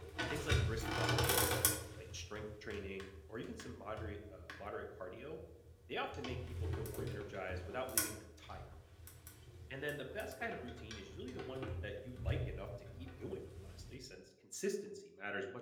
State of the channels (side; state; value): both; identical; correlation 1.00